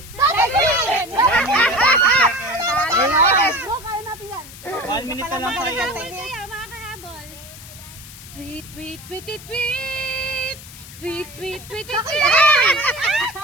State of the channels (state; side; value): noise; left; hiss, 16 dB below the sound